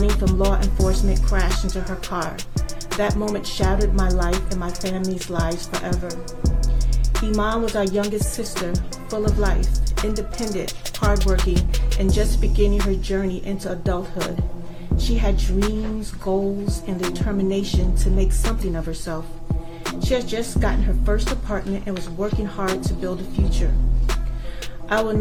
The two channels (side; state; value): both; identical; correlation 1.00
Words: from law enforcement crashed into her car. That moment shattered my life and my family's lives forever. Iman was our youngest sister, full of life, independent, hardworking, and just beginning her journey into adulthood. She had dreams, goals, and the determination to make something of herself. She had just gotten her first apartment and was working hard to build a future. I will